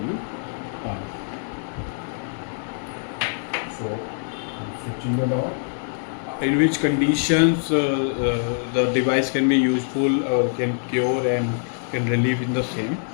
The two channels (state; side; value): silent; right; digital silence